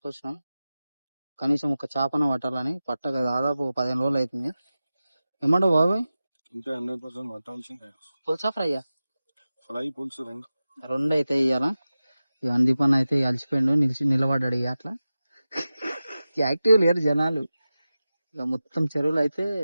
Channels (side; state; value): both; inverted; correlation -0.94